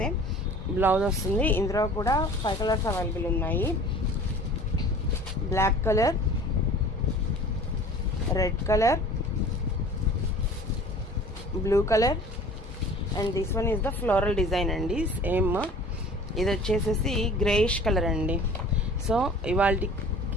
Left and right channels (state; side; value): normal; both; correlation 0.46